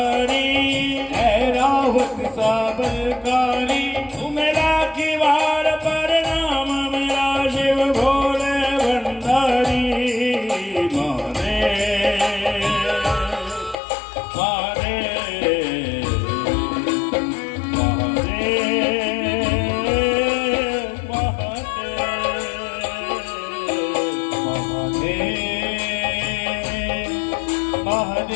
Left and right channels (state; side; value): drops out; right; at 13.8 s